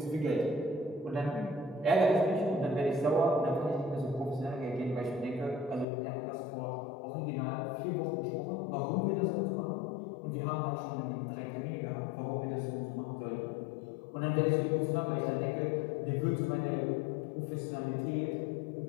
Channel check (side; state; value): right; drops out; at 5.9 s